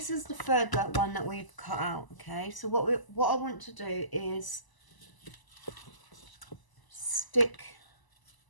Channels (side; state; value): right; late; 1.0 ms